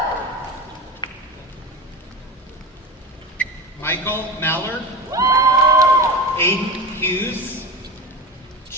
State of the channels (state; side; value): normal; both; correlation 0.27